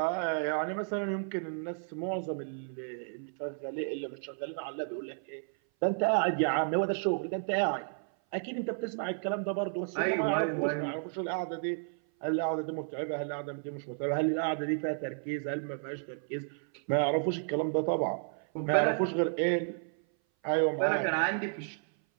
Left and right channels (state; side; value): silent; left; 56 dB below the other